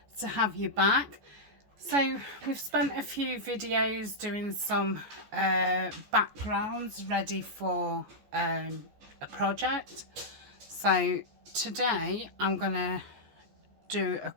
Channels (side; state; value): left; late; 14 ms